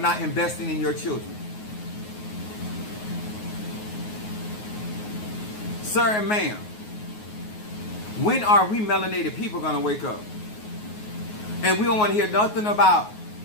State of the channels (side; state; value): right; late; 9.5 ms